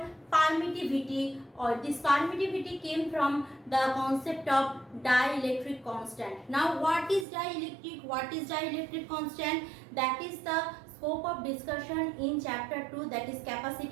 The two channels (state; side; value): drops out; left; at 7.2 s